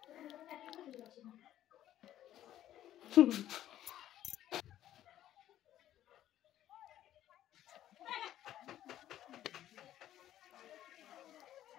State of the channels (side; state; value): right; quieter; 12.4 dB